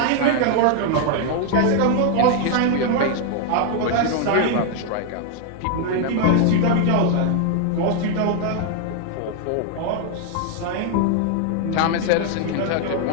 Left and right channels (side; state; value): both; different; correlation 0.00